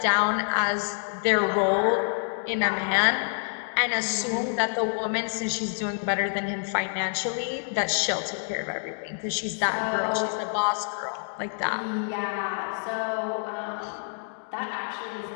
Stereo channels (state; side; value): silent; right; digital silence